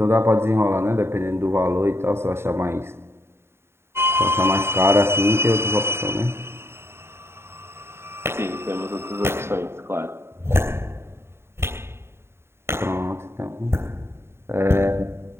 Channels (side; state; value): left; late; 0.12 ms